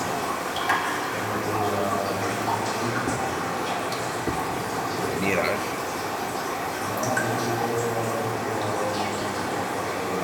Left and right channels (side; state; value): both; identical; correlation 1.00